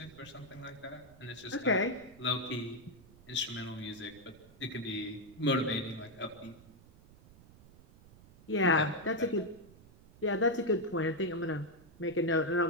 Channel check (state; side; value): noise; right; rumble, 23 dB below the sound